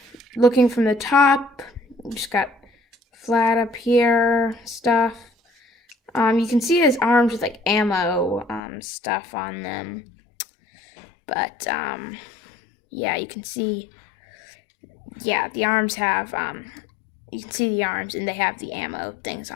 looking from the top, just got flat up here stuff. You can see his arms with like ammo stuff on them. But yeah, you can see, yeah, the arms have you can see the arms and they have the ammo things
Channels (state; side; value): drops out; right; at 8.6 s